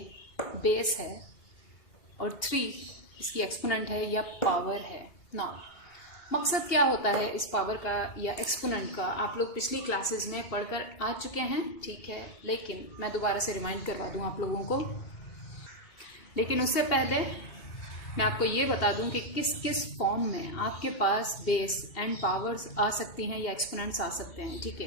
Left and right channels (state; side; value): late; right; 2.8 ms